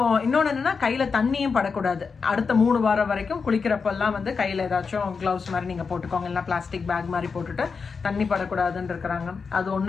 இன்னொன்று என்னன்னா கையில் தண்ணியும் படக்கூடாது. அடுத்த 3 வாரம் வரைக்கும் குளிக்கிறப்பெல்லாம் வந்து கையில் ஏதாச்சும் க்ளவுஸ் மாதிரி நீங்கள் போட்டுக்கோங்க, இல்லைனா பிளாஸ்டிக் பேக் மாதிரி போட்டுட்டு தண்ணி படக்கூடாதுன்னு இருக்கிறாங்க. அது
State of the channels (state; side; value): quieter; right; 5.2 dB